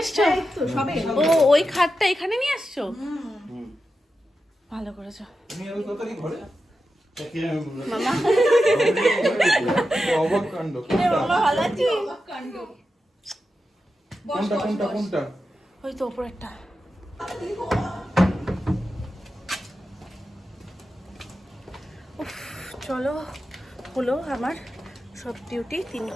এসছো? ও ওই খাটটা এখানে নিয়ে আসছো? ভালো করেছো মামা। অবাক কাণ্ড। মামা ভালো আছিস? কোনটা? ওই তো উপরেরটা। উফ, চলো হলো আমার সব ডিউটি। 3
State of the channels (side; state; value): both; normal; correlation 0.90